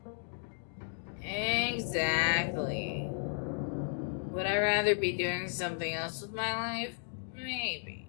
Exactly. Would I rather be doing something else with my life? Maybe.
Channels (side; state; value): right; silent; digital silence